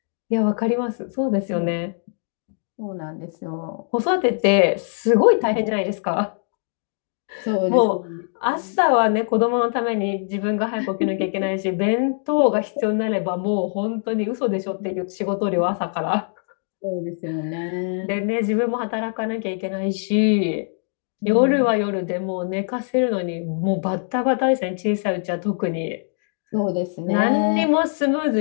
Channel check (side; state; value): right; silent; 59 dB below the other